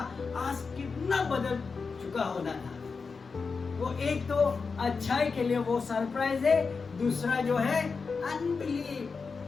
आज कितना बदल चुका होना था। वो एक तो अच्छाई के लिए वो सरप्राइज है, दूसरा जो है अनबिलीव,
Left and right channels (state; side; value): quieter; right; 4.9 dB